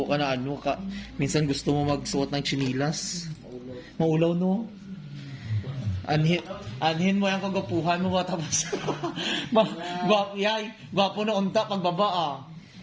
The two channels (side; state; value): both; identical; correlation 1.00